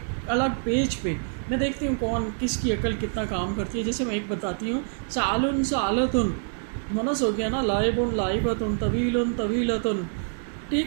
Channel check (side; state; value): left; silent; digital silence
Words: الگ پیج پہ میں دیکھتی ہوں کون کس کی عقل کتنا کام کرتی ہے. جیسے میں ایک بتاتی ہوں, سعال سعالتن مؤنث ہو گیا نا, لائب لائبتن طویل طویلتن, ٹھیک.